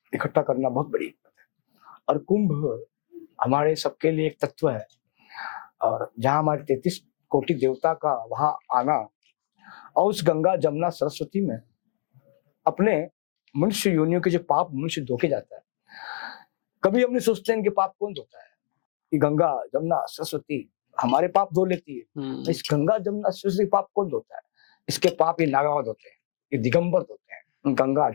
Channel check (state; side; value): silent; right; digital silence